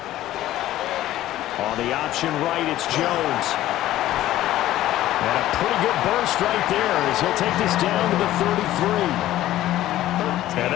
On the option right, it's Jones. And a pretty good burst right there as he'll take this down to the 33. And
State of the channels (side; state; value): right; quieter; 14.3 dB